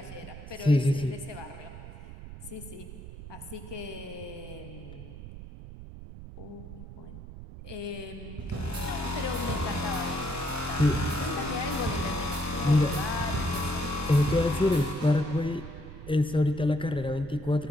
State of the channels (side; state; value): right; noise; rumble, 13 dB below the sound